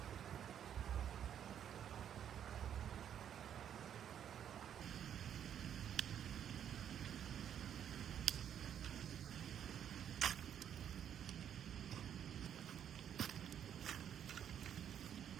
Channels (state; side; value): quieter; left; 9.3 dB